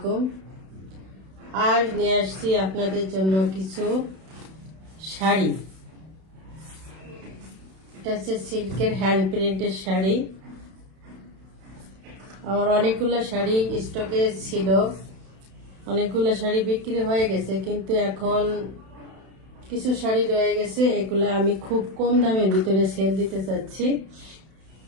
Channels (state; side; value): late; left; 31 ms